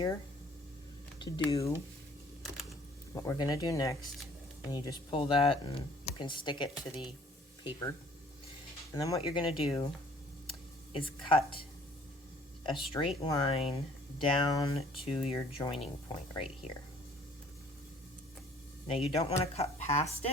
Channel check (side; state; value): both; normal; correlation 0.56